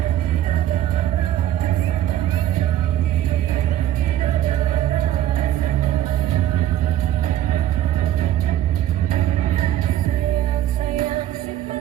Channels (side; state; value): left; quieter; 12.3 dB